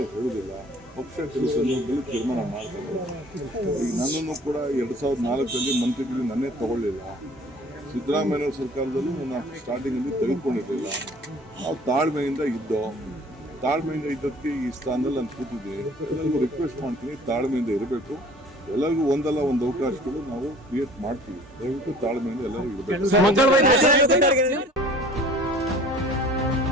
ಹೇಳುವುದಿಲ್ಲ. ಪಕ್ಷ ಕೆಲವು ಸಂದರ್ಭದಲ್ಲಿ ತೀರ್ಮಾನ ಮಾಡ್ತಾರೆ. ಈಗ ನನ್ನನ್ನು ಕೂಡ 2004 ಮಂತ್ರಿಗಳು ನನ್ನೇ ತಗೊಳ್ಳಿಲ್ಲ. ಸಿದ್ದರಾಮಯ್ಯ ಸರ್ಕಾರದಲ್ಲೂ ನನ್ನ ಸ್ಟಾರ್ಟಿಂಗಲ್ಲಿ ತೆಗೆದುಕೊಂಡಿರಲಿಲ್ಲ. ನಾವು ತಾಳ್ಮೆಯಿಂದ ಇದ್ದಕ್ಕೆ ಈ ಸ್ಥಾನದಲ್ಲಿ ನಾನು ಕೂತಿದ್ದೀನಿ. ಎಲ್ಲರಿಗೂ ರಿಕ್ವೆಸ್ಟ್ ಮಾಡ್ತೀನಿ, ತಾಳ್ಮೆಯಿಂದ ಇರಬೇಕು. ಎಲ್ಲರಿಗೂ ಒಂದಲ್ಲ ಒಂದು ಅವಕಾಶಗಳು ನಾವು ಕ್ರಿಯೇಟ್ ಮಾಡ್ತೀವಿ. ದಯವಿಟ್ಟು ತಾಳ್ಮೆಯಿಂದ ಎಲ್ಲರಿಗೂ ಇರಬೇಕು.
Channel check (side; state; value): both; normal; correlation 0.49